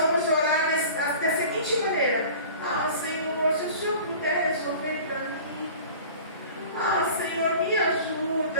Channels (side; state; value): both; inverted; correlation -0.42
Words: orar da seguinte maneira. Senhor, se o Senhor puder resolver para mim. Senhor, me